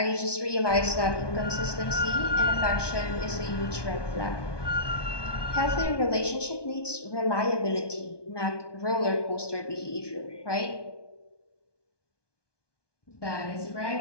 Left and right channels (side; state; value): right; late; 1.2 ms